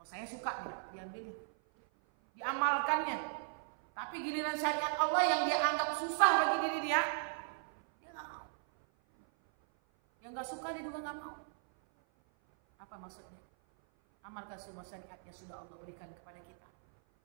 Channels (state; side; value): silent; left; 53 dB below the other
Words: saya suka nih, diambil. Diamalkannya. Tapi giliran syariat Allah yang dia anggap susah bagi diri dia nggak mau. Yang nggak suka dia juga nggak mau. Apa maksudnya? Amalkan semua syariat yang sudah Allah berikan kepada kita.